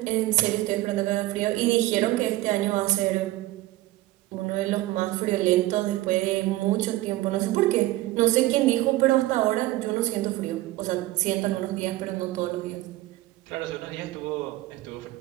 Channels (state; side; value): quieter; left; 17.5 dB